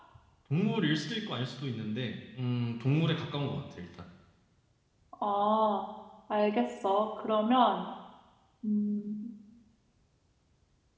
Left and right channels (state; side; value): identical; both; correlation 1.00